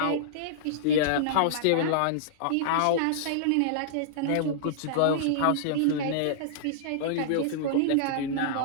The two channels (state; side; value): different; both; correlation -0.02